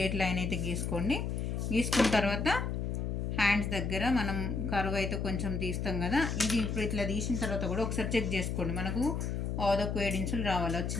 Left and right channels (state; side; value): noise; left; hum, 1 dB below the sound